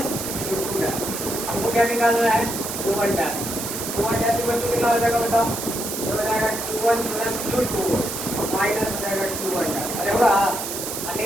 Q2 dash. हमको क्या निकालना है Q1 डैश। Q1 डैश कितना हो जाएगा बताओ? ये हो जाएगा Q1 प्लस Q2 माइनस हो जाएगा Q1 डैश। अरे होगा?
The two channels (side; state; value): right; noise; hiss, 5 dB below the sound